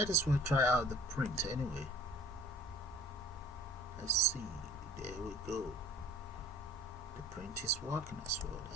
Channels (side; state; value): both; normal; correlation 0.50